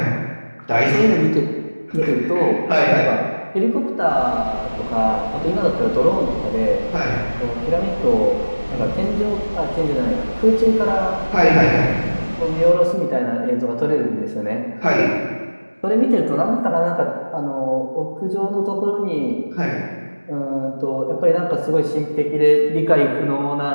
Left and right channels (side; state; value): both; inverted; correlation -1.00